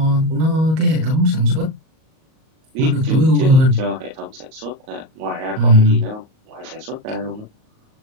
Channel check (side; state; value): left; late; 38 ms